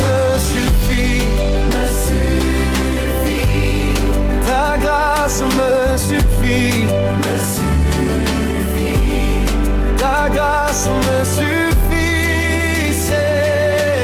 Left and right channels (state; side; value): identical; both; correlation 1.00